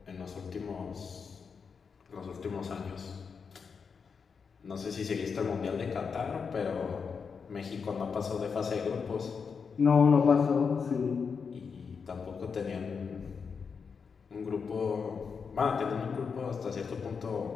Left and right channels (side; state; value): right; quieter; 5.8 dB